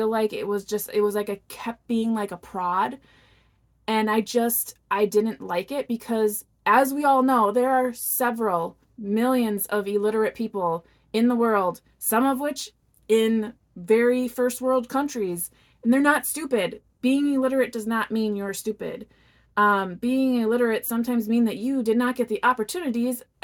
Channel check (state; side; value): identical; both; correlation 1.00